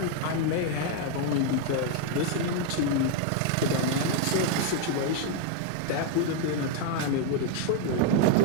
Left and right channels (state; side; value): different; both; correlation 0.01